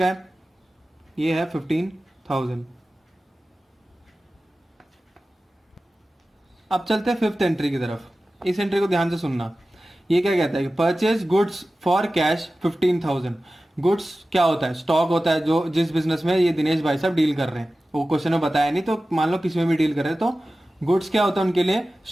है, ये है 15,000। अब चलते हैं फिफ्थ एंट्री की तरफ। इस एंट्री को ध्यान से सुनना। ये क्या कहता है कि purchase goods for cash 15,000। Goods क्या होता है, स्टॉक होता है, जो जिस बिजनेस में ये दिनेश भाई साहब डील कर रहे हैं। वो क्वेश्चन में बताया नहीं, तो मान लो किसी में भी डील कर रहे हैं, तो गुड्स क्या होता है उनके लिए,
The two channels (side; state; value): both; normal; correlation 0.95